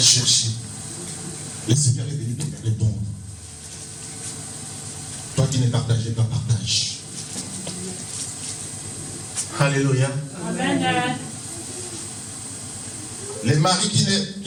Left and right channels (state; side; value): identical; both; correlation 1.00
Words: Le Seigneur est venu te répondre. Toi qui ne partageais pas, partage. Alléluia. Amen. Les maris